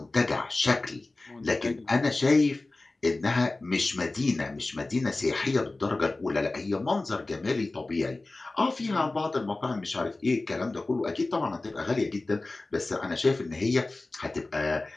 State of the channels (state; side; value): quieter; right; 3.1 dB